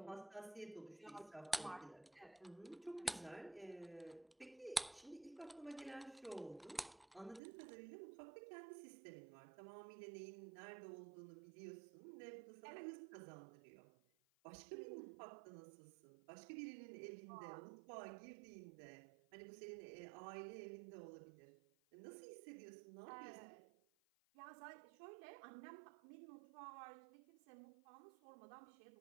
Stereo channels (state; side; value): drops out; left; at 7.4 s